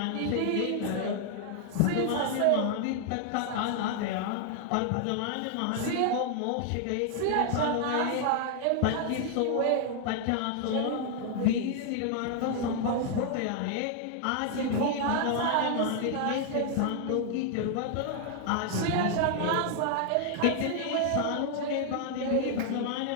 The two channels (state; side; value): different; both; correlation 0.00